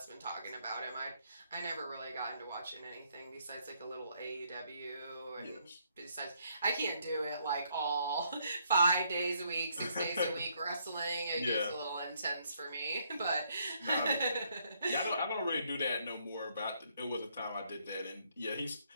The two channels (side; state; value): both; inverted; correlation -0.71